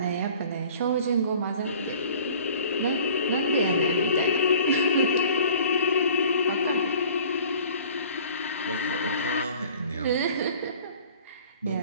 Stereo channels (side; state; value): both; inverted; correlation -0.48